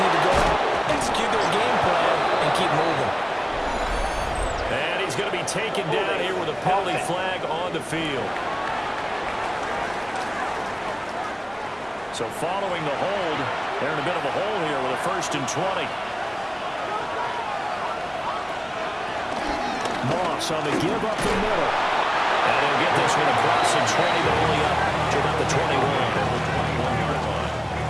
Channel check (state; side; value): identical; both; correlation 1.00